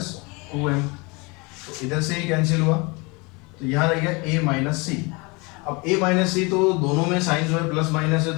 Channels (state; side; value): quieter; right; 27.8 dB